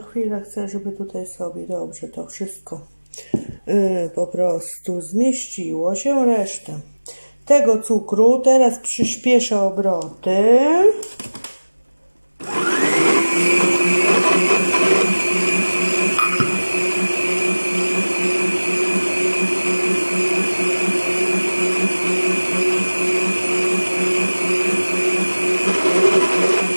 chcę, żeby tutaj sobie dobrze to wszystko po prostu zmieściło się. Resztę tego cukru teraz przyspieszę obroty.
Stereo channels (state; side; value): inverted; both; correlation -1.00